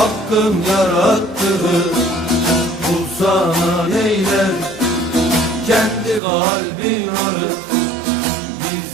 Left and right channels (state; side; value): drops out; left; at 6.2 s